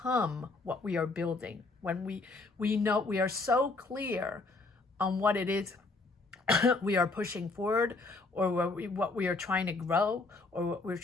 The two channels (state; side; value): quieter; right; 3.5 dB